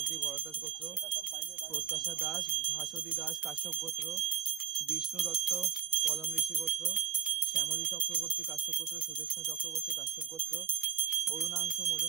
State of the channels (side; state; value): left; quieter; 9.5 dB